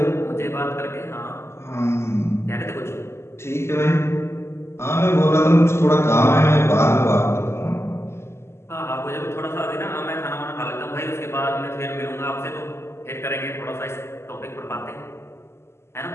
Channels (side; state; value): right; late; 0.13 ms